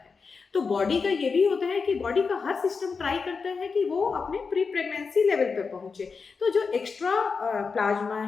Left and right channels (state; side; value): quieter; right; 5.0 dB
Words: तो बॉडी का ये भी होता है कि बॉडी का हर सिस्टम ट्राई करता है कि वो अपने प्री प्रेगनेंसी लेवल पे पहुंचे, तो जो एक्स्ट्रा प्लाज्मा